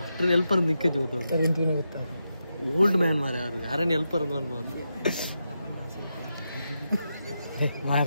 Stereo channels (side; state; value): both; inverted; correlation -0.87